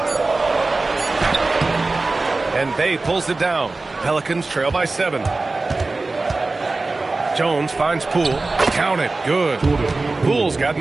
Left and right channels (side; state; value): left; quieter; 3.4 dB